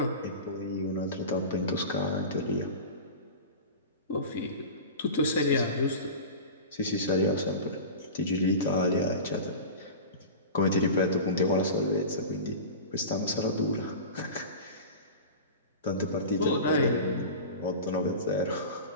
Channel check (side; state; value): both; inverted; correlation -0.32